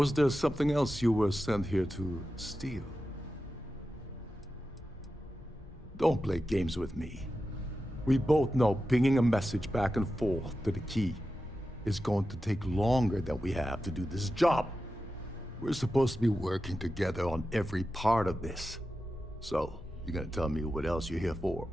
there something else you were sent here to steal? Don't play games with me. We both know pinging a message back and forth to the key is going to take longer than we have to do this job. We're supposed to be working together on every part of this. So, you gonna tell me what else you're here for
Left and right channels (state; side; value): normal; both; correlation 0.92